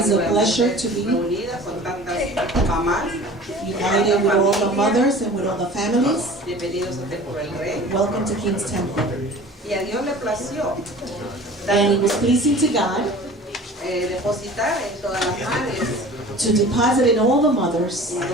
a pleasure to be united with all the mothers and with all the families. Welcome to King's Temple. And it was pleasing to God to deposit in all the mothers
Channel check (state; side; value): normal; both; correlation 0.42